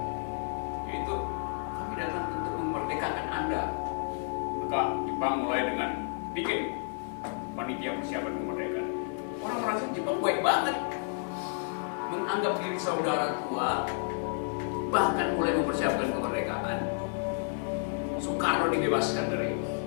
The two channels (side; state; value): right; silent; 57 dB below the other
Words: yaitu kami datang untuk memerdekakan Anda. Maka Jepang mulai dengan bikin panitia persiapan kemerdekaan. Orang merasa Jepang baik banget, menganggap diri saudara tua, bahkan mulai mempersiapkan kemerdekaan. Soekarno dibebaskan dari